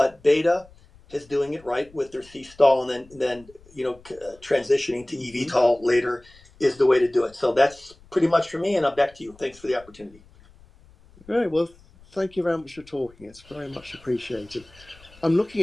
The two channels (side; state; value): left; noise; rumble, 26 dB below the sound